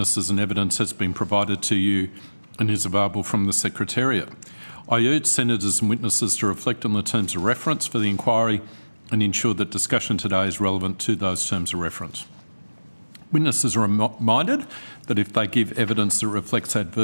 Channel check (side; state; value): both; inverted; correlation -1.00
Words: and evidence has been provided to you and is available from the Secretariat. I urge senators and witnesses to reflect on the terms of reference for the inquiry and ensure that discussion today is relevant to those terms of reference. Witnesses are reminded that if they give evidence that reflects